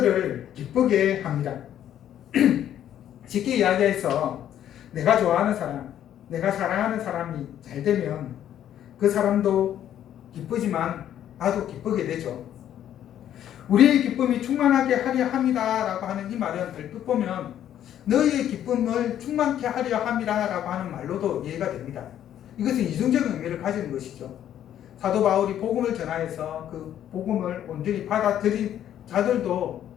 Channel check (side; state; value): right; quieter; 10.8 dB